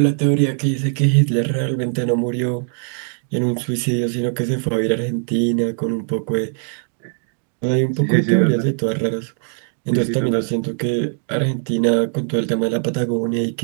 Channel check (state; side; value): silent; left; digital silence